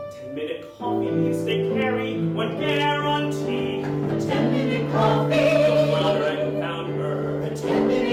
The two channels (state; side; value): identical; both; correlation 1.00